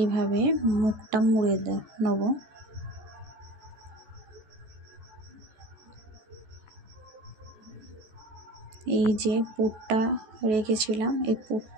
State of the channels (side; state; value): left; late; 14 ms